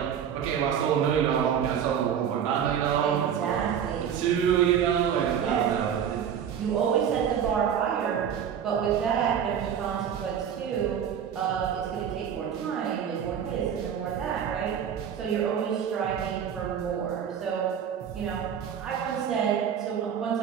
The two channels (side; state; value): left; quieter; 8.5 dB